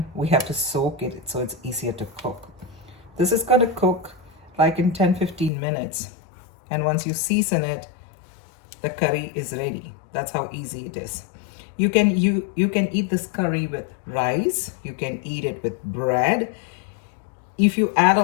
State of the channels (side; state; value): right; drops out; at 5.5 s